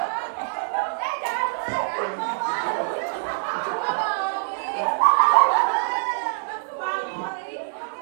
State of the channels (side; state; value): left; silent; digital silence